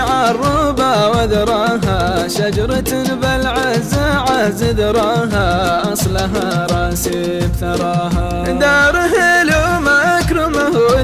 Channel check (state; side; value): identical; both; correlation 1.00